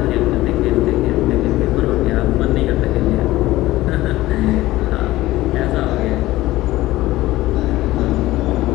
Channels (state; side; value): quieter; right; 17.1 dB